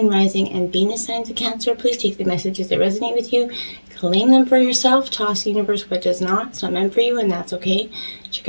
Rising, and Venus signs of Cancer. Please take the messages that resonate with you, claim them for yourself, toss the universe what does not. It's not meant for you, and that's okay.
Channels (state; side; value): inverted; both; correlation -1.00